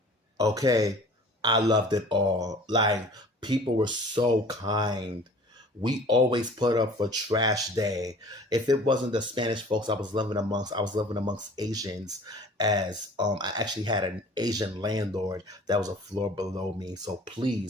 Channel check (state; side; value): normal; both; correlation 0.46